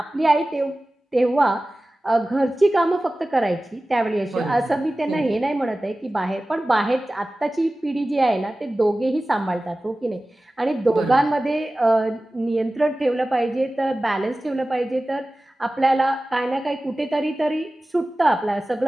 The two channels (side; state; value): both; normal; correlation 0.96